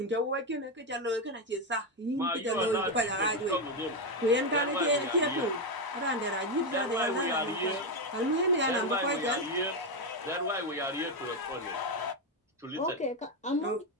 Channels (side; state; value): both; normal; correlation 0.07